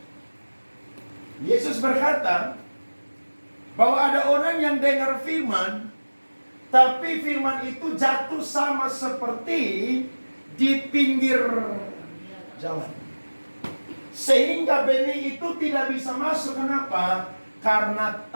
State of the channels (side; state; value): both; inverted; correlation -1.00